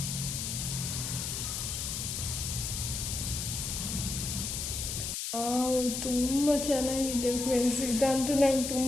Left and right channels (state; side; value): noise; left; hiss, 3 dB below the sound